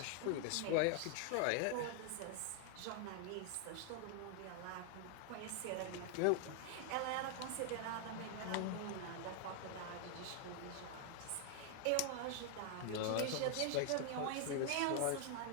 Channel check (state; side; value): different; both; correlation 0.00